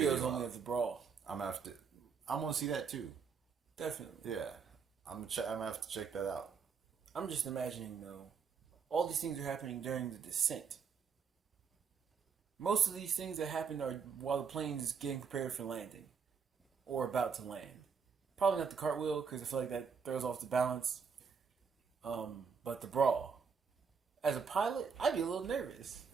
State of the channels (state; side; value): quieter; left; 6.1 dB